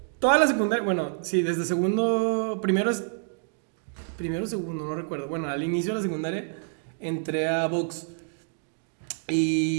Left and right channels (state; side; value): silent; left; 60 dB below the other